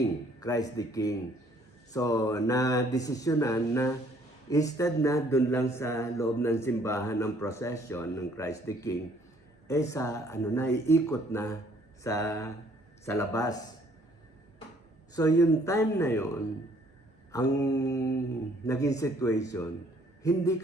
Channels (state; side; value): normal; both; correlation 0.62